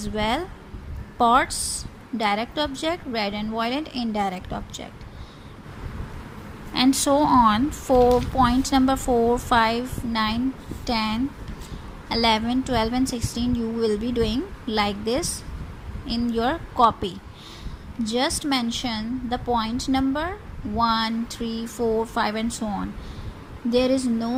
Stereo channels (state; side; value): identical; both; correlation 1.00